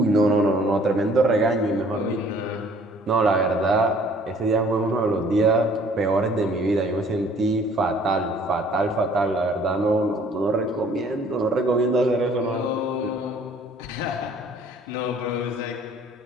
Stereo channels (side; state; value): both; normal; correlation 0.56